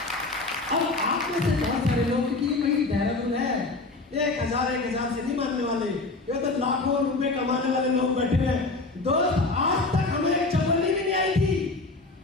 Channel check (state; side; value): quieter; right; 3.3 dB